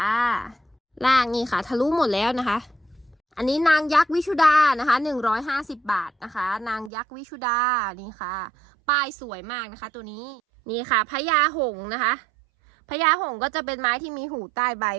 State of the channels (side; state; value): left; drops out; at 6.9 s